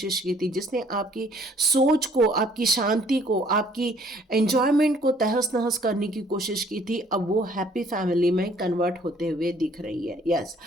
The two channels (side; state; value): both; normal; correlation 0.60